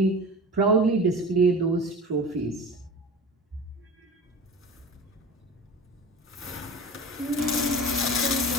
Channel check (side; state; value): both; normal; correlation 0.35